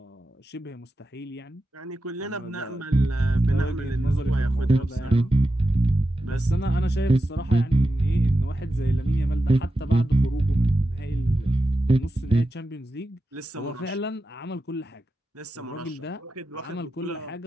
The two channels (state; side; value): normal; both; correlation 0.90